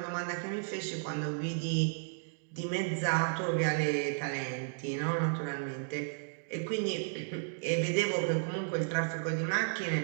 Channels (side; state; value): left; silent; digital silence